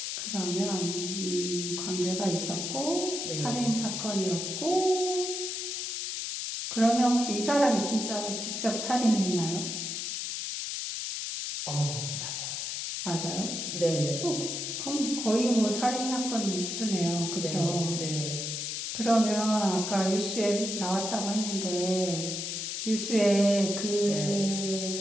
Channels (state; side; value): noise; left; hiss, 3 dB below the sound